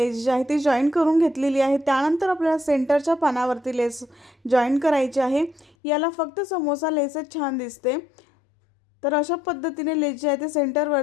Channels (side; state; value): right; drops out; at 5.8 s